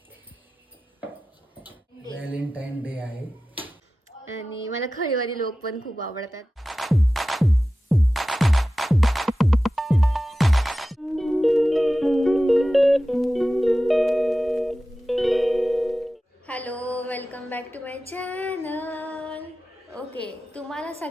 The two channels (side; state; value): both; normal; correlation 0.95